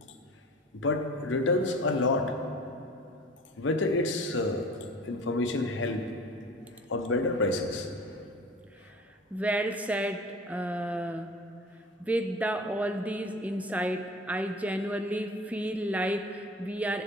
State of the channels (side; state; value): both; normal; correlation 0.40